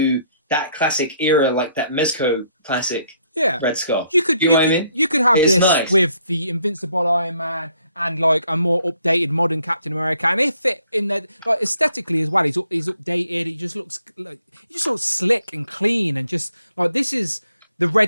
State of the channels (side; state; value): both; inverted; correlation -0.68